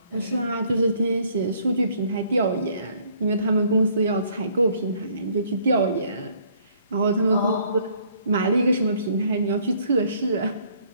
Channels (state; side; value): inverted; both; correlation -0.62